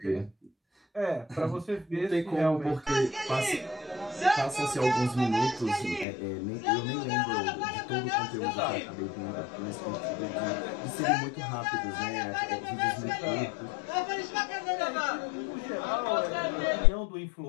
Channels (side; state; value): right; drops out; at 6.1 s